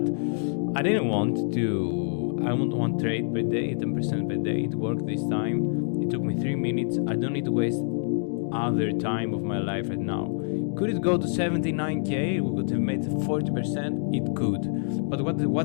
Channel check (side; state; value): right; silent; digital silence